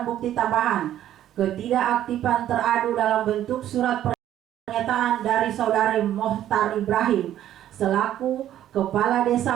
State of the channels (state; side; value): quieter; left; 11.9 dB